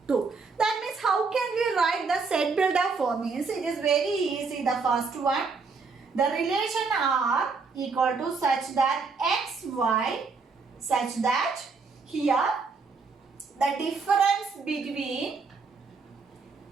2. That means how can we write the set builder form? Means it is very easy. The first one, the relation R equal to such that x, y, such that here the difference between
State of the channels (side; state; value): left; quieter; 4.6 dB